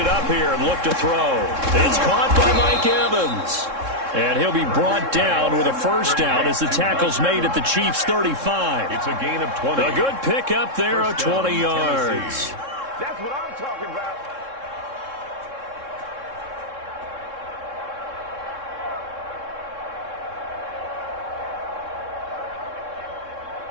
up here and look to throw. It's caught by Mike Evans. And he'll be brought down with a first down as the tackle's made at the Chiefs' 35. It's a gain of 20. A good pick up there of 20 yards. Tennessee. That's what I'm talking about.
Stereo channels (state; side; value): late; left; 3.7 ms